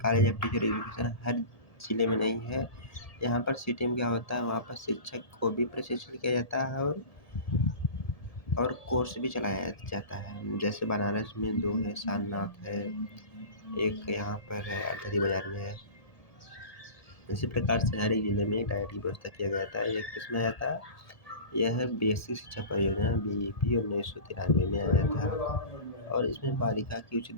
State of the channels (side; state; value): right; late; 1.7 ms